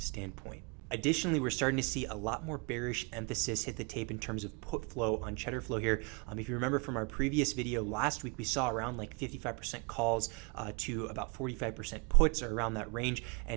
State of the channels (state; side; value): quieter; left; 32.0 dB